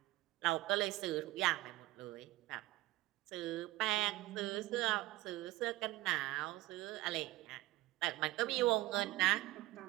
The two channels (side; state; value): left; quieter; 17.9 dB